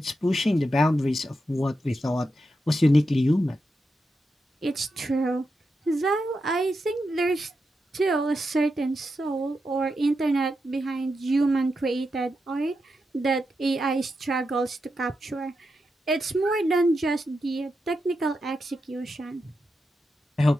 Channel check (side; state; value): both; normal; correlation 0.87